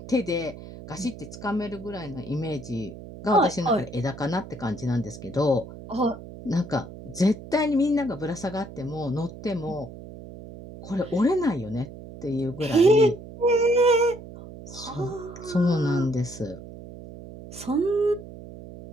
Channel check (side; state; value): right; noise; hum, 14 dB below the sound